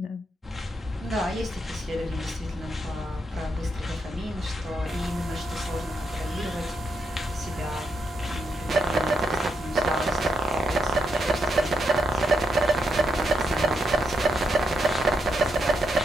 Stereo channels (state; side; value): normal; both; correlation 0.81